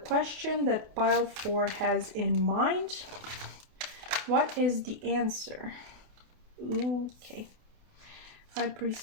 that pile 4 has in mind. What is the answer? Okay. High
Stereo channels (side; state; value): left; late; 28 ms